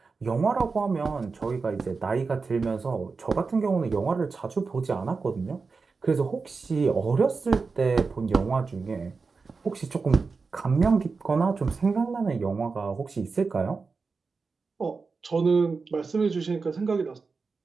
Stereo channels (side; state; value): left; quieter; 4.5 dB